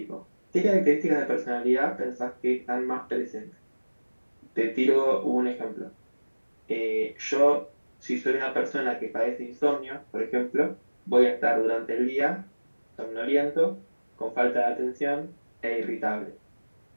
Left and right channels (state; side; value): inverted; both; correlation -1.00